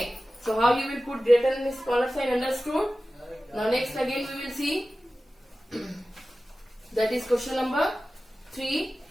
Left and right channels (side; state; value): both; normal; correlation 0.95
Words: So how you will put greater and smaller sign, understood? Now next again we will see. That is question number 3.